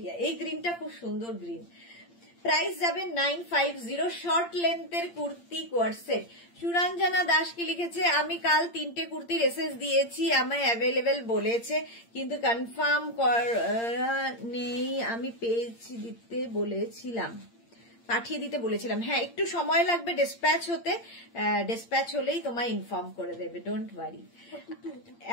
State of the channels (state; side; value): late; right; 8.7 ms